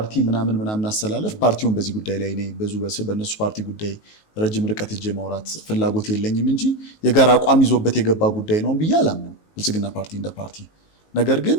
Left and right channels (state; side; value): late; right; 19 ms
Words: ምናምን አሰላለፍ ፓርቲውን በዚህ ጉዳይ ላይ እኔ በእነሱ ፓርቲ ጉዳይ ረጅም ርቀት እጄ ማውራት ፍላጎት የለኝም እንጂ የጋራ አቋም ይዞበት የገባ ጉዳይ ነው ብዬ አላምንም ብልጽግና ፓርቲ እንደ ፓርቲ። ነገር ግን